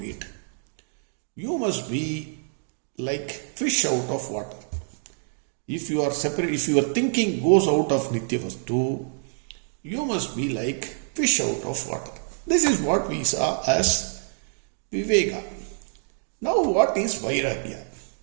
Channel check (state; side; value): silent; left; digital silence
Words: it. You must be like fish out of water. If you are separate, if your thinking goes out of Nitya Vastu, you must be like fish out of water. This is what we saw as Viveka. Now what is Vairagya?